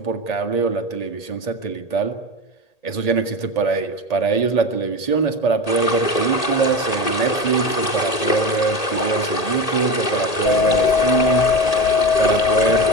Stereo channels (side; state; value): right; late; 1.8 ms